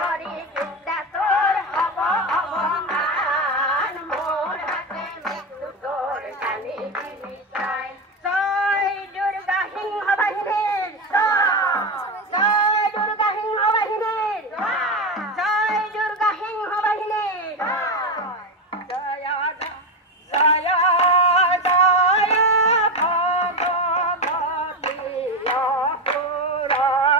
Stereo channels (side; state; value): both; normal; correlation 0.15